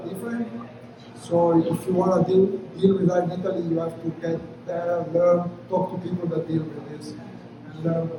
different. So, if you want to deal with that in Italy, you have to get there, learn, talk to people that deal with this, and learn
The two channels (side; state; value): both; identical; correlation 1.00